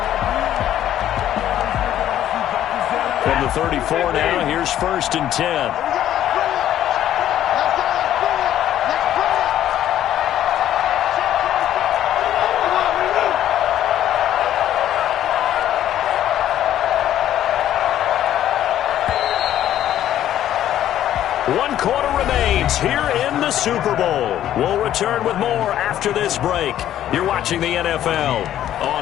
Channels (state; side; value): quieter; right; 11.8 dB